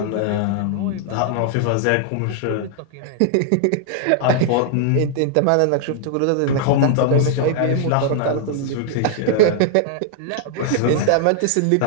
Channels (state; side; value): different; both; correlation -0.01